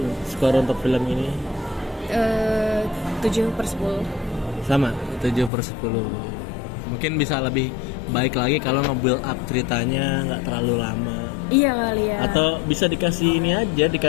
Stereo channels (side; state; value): right; drops out; at 5.5 s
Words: skor untuk film ini 7/10. sama 7/10. Mungkin bisa lebih baik lagi kalau nge-build up ceritanya nggak terlalu lama. Iya kali ya. Atau bisa dikasih ini aja,